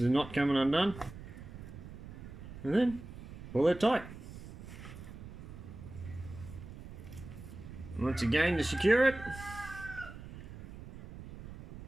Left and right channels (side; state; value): right; noise; rumble, 13 dB below the sound